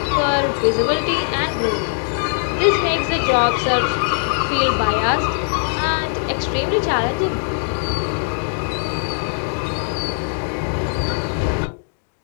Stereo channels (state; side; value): silent; right; digital silence